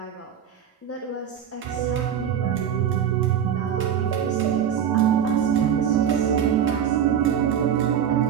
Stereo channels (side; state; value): left; quieter; 8.9 dB